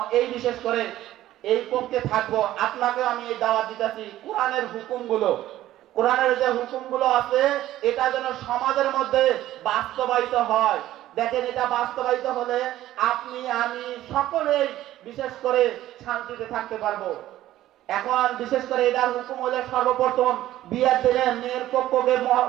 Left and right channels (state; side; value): quieter; left; 14.1 dB